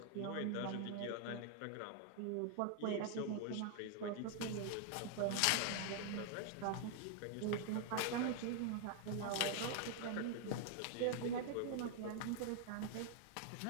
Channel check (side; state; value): both; different; correlation 0.00